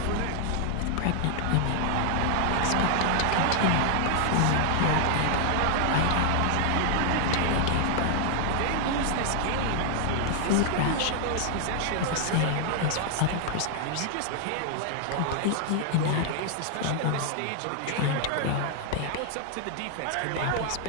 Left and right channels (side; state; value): both; different; correlation 0.00